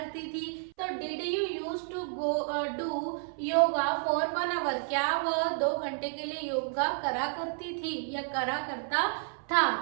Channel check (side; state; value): left; silent; 57 dB below the other